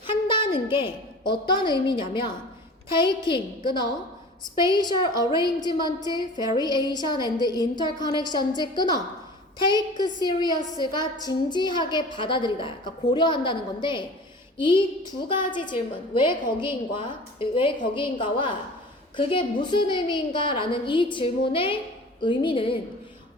한다는 게 어떤 의미냐면 taking, 끊어. spatial arrangement, variation and interconnections, 끊어. take serious가 진지하게 받아들이다. 그러니까 고려한다는 건데 이 두 가지 질문, 왜 거기인가와 그게 무슨 의미인가라는 이 질문의 의미는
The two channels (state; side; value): normal; both; correlation 0.41